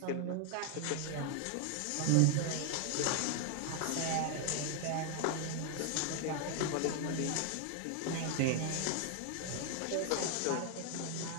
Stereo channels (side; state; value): both; different; correlation 0.00